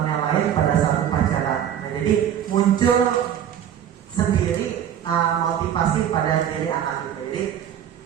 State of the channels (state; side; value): quieter; left; 9.8 dB